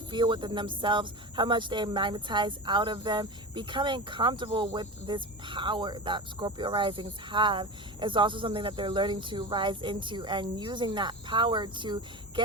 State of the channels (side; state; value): both; normal; correlation 0.27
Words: feel within themselves, how much they magnetize out of them. Becoming comfortable with this power that Scorpio risings have is also something that they're learning to rise into, and using that power to